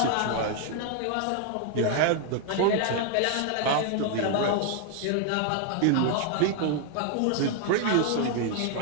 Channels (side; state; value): both; different; correlation 0.00